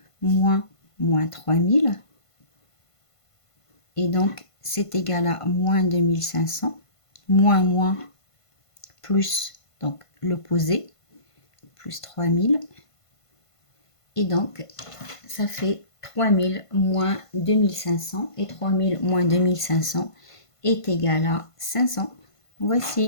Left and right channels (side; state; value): right; late; 1.5 ms